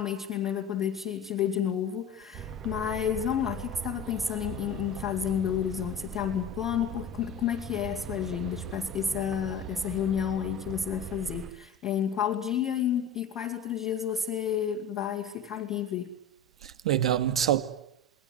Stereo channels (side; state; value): right; quieter; 3.8 dB